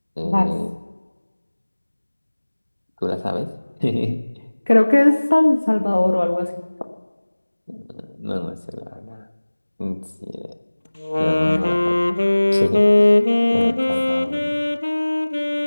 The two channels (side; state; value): both; inverted; correlation -1.00